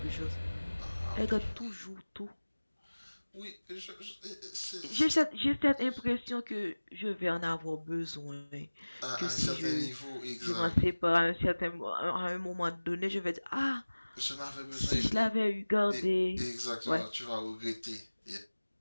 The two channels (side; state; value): both; inverted; correlation -1.00